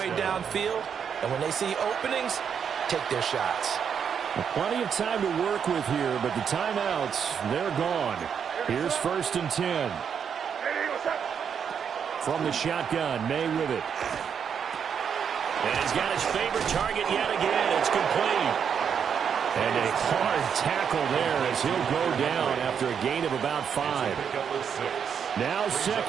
downfield. And when they see openings, take their shots. Well, plenty of time to work with here, but the timeouts, they're gone. Here's 1st and 10. From the shotgun, May with it. And he's got his favorite target yet again. It's complete. And a hard tackle there as he'll go down after a gain of about 5. Now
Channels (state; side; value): quieter; left; 7.4 dB